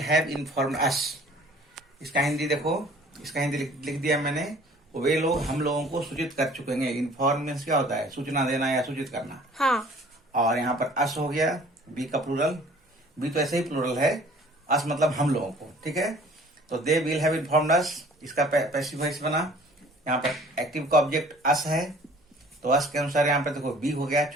हैव इन्फॉर्म्ड अस। इसका हिंदी देखो, इसका हिंदी लिख दिया मैंने, वे लोग हम लोगों को सूचित कर चुके हैं। इन्फॉर्म मीन्स क्या होता है, सूचना देना या सूचित करना। हाँ। और यहाँ पर अस हो गया, बी का प्लूरल, बी तो ऐसे ही प्लूरल है, अस मतलब हम लोगों को। ठीक है, तो दे विल हैव इन्फॉर्म्ड अस, इसका पैसिव वॉइस बना। यहाँ पर एक्टिव का ऑब्जेक्ट अस है, तो अस के अनुसार यहाँ पर देखो बी हो गया,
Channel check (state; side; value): normal; both; correlation 0.52